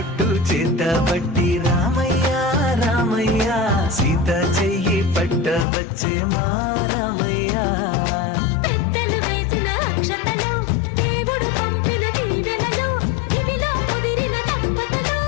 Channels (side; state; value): right; drops out; at 5.7 s